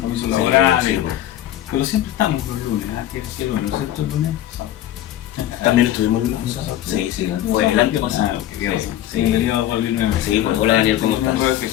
laborales, sí. Pero siempre estamos los lunes, ¿qué lunes? ¿No es cierto el lunes? También estuvimos el lunes. Sí, fue el año pasado. Bienvenido Juan Luis nuevamente. Sí, pues hola Daniel, ¿cómo estás?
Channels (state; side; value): quieter; right; 12.7 dB